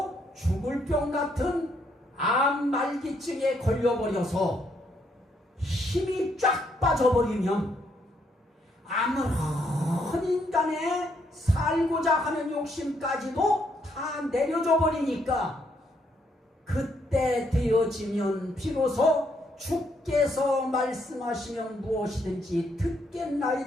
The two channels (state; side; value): normal; both; correlation 0.73